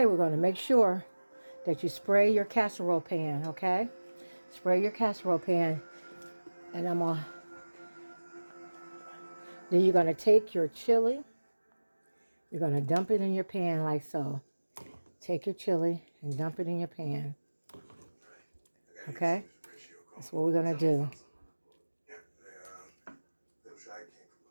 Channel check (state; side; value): inverted; both; correlation -1.00